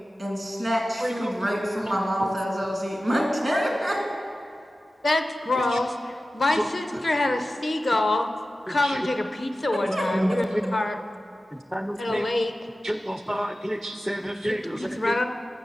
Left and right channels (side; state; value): both; normal; correlation 0.95